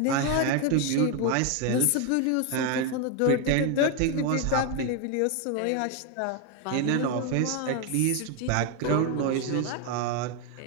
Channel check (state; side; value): different; both; correlation 0.01